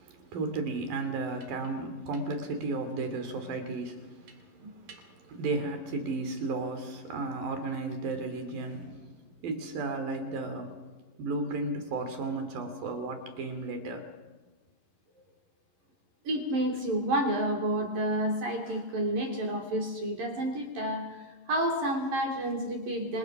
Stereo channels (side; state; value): left; late; 11 ms